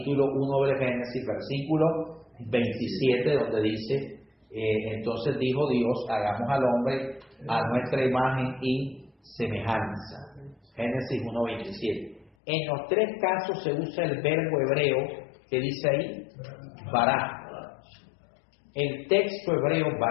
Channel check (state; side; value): drops out; right; at 12.3 s